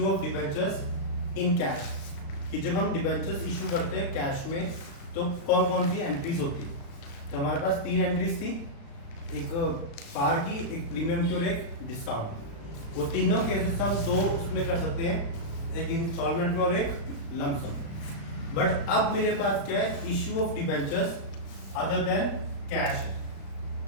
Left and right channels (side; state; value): right; late; 36 ms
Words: of debentures in cash, कि जब हम डिबेंचर्स इशू करते हैं कैश में तो कौन कौन सी एंट्रीज होती है। तो हमारे पास 3 एंट्रीज थी, एक पार की, एक प्रीमियम की और एक डिस्काउंट। वो तीनों केसेस हम 2 उसमें कर सकते हैं, एक इंस्टॉलमेंट में और एक लमसम। बट अब मेरे पास क्या है, issue of debentures other than cash,